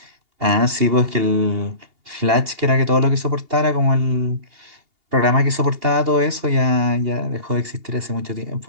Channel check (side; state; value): left; late; 2.8 ms